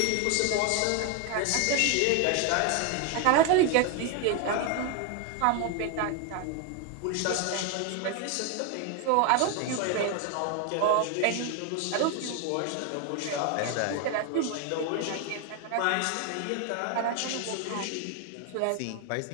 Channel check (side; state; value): both; different; correlation 0.01